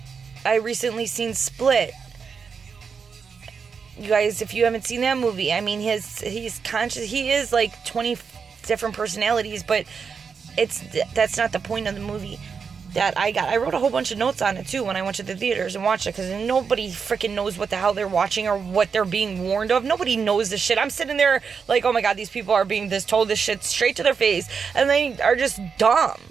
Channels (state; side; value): quieter; left; 5.9 dB